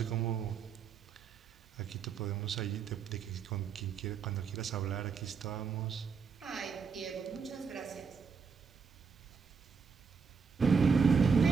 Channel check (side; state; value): left; quieter; 5.7 dB